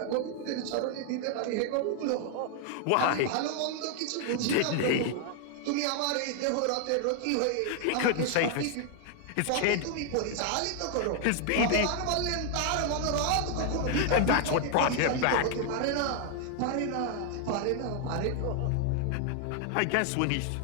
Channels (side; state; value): both; different; correlation 0.00